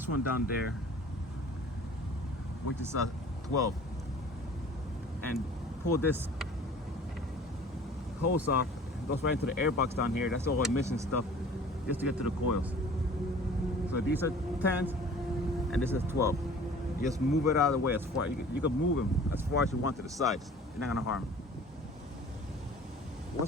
one down there, which is a 12. And pull this hose off. It goes right into the air box down here. That's all emission stuff, just to get to the coils. So these are 10s, and this is 12. You just move it out of the way as far. You can move them as far as you want to the sides. You're not gonna harm.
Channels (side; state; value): both; normal; correlation 0.46